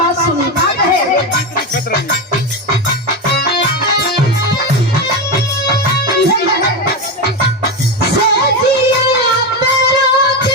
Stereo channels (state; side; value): normal; both; correlation 0.14